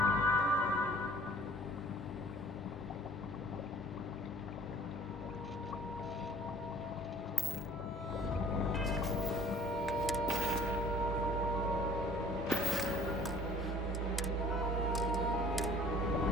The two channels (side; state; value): both; normal; correlation 0.54